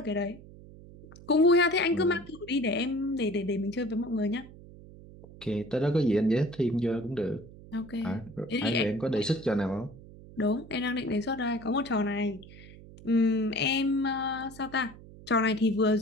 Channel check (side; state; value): right; noise; hum, 19 dB below the sound